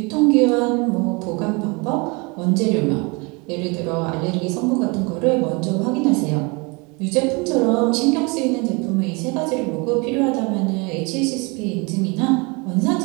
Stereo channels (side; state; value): left; quieter; 28.8 dB